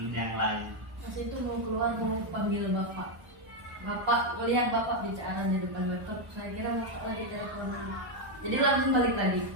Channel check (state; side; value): late; left; 1.1 ms